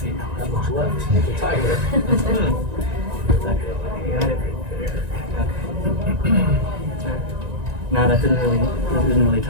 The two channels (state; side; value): late; left; 1.9 ms